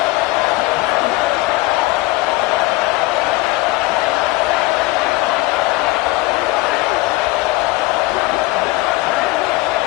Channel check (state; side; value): quieter; right; 19.9 dB